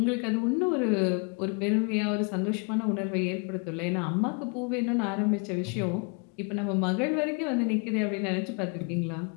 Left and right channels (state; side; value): quieter; right; 35.0 dB